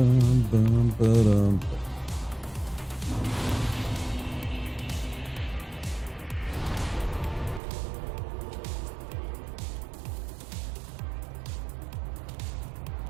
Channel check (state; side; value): drops out; left; at 7.6 s